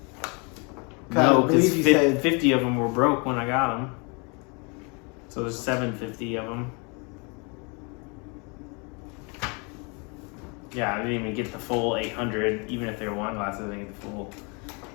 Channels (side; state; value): right; quieter; 32.5 dB